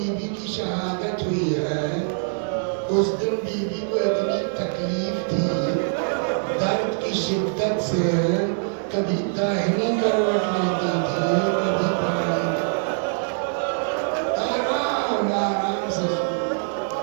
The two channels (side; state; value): left; silent; digital silence